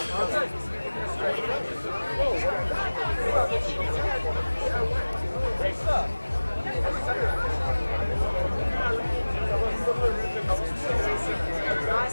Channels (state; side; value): inverted; both; correlation -1.00